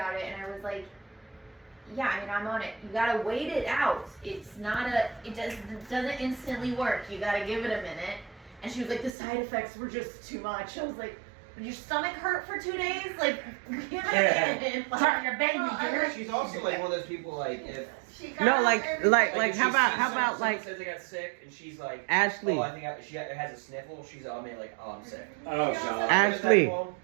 it, and I was like, Yeah, I mean, I'm on it. You gotta wait it out. It's not it doesn't instantly work. You gotta give it a minute. And she was like, the side effects were just too much. I was like, did your stomach hurt for 2 days? Like, give it a minute. Like, your baby, dear. She's also like one of those people like if. No, like if how she about sees how about someone like says they got sick and she's like Ashley? oh I think she has a sniffle. She's I mean like oh I'm sick. Oh god. Ashley,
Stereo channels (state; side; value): drops out; left; at 9.1 s